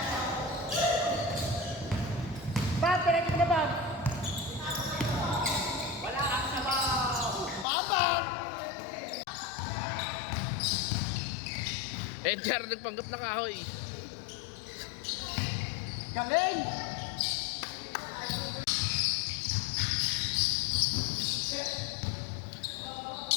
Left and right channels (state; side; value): drops out; right; at 7.7 s